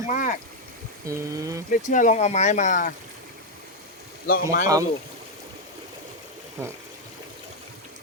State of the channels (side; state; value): both; normal; correlation 0.02